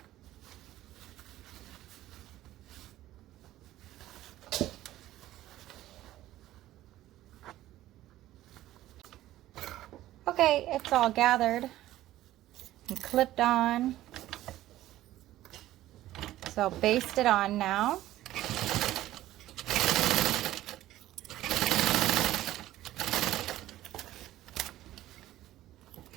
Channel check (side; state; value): left; quieter; 14.7 dB